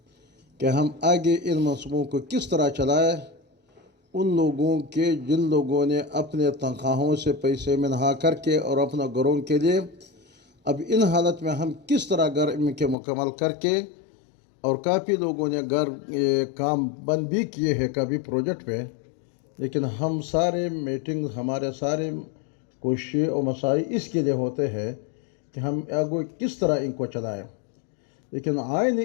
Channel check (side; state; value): right; drops out; at 13.0 s